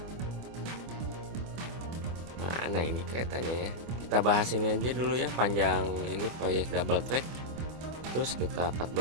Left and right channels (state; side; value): late; left; 24 ms